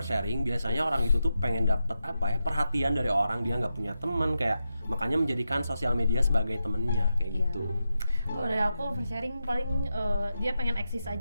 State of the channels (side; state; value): both; inverted; correlation -0.88